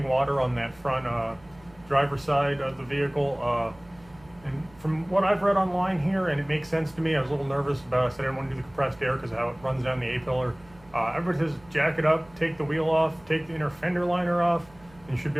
water on that front driver's side of the vehicle. And from what I've read online here, and it makes sense to me, I was a little nervous about it. I said I didn't want to do the compressed air because of how it runs down the A-pillar. Everybody says jack it up, take the wheel off, take the inner fender liner off, and you should be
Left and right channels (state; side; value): noise; right; hum, 25 dB below the sound